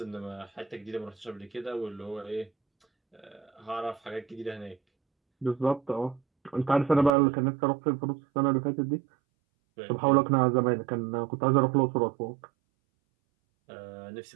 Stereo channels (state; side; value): drops out; left; at 7.1 s